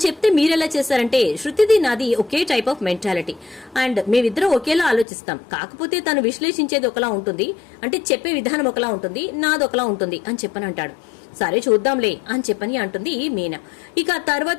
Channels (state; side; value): drops out; right; at 5.1 s